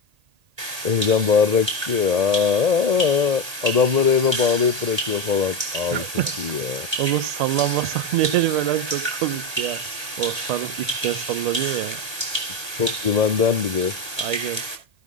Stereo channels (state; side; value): late; left; 1.8 ms